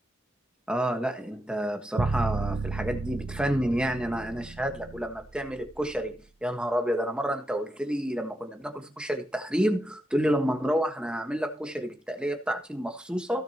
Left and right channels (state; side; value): normal; both; correlation 0.85